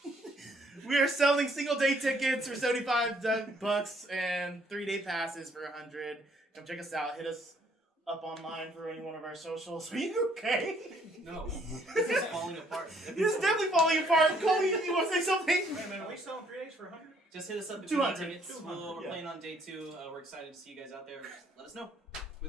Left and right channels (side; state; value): both; normal; correlation 0.65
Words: single day tickets for $75 and 3-day passes for $100. Come check us out. Hit us up online for any one of our socials. Are you okay? No. This is falling apart. This is definitely falling apart. Cole, you want to say something? Wait a minute, are we selling 3 days for 100? just hit us up if you want 200. tickets. We're playing on day 2. We're excited to see you guys out there. Just let us know. We